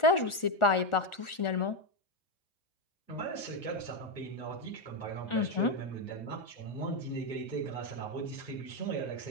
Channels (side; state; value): right; late; 1.4 ms